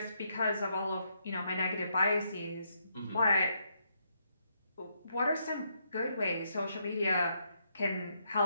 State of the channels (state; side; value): inverted; both; correlation -0.77